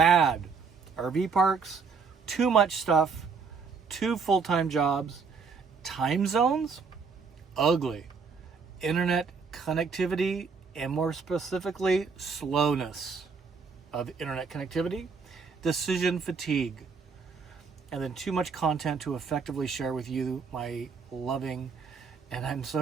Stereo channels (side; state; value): left; quieter; 5.3 dB